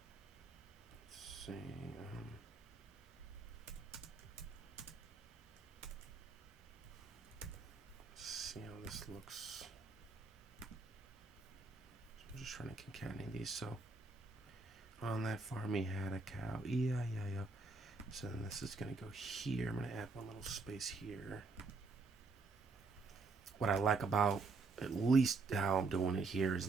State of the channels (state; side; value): quieter; left; 3.9 dB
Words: see. Let's see how this looks. So I'm just trying to concatenate these. So on that farm he had a cow. Yeah. So then this is gonna go here. I'm gonna add one little space here. What I like about at least how I'm doing it here is